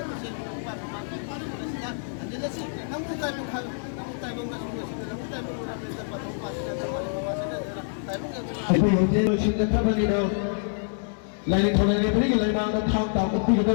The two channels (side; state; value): right; silent; digital silence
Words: 아이고 영재는 신작하반이나 라인이 전화에 버리기 라인마다 탕탕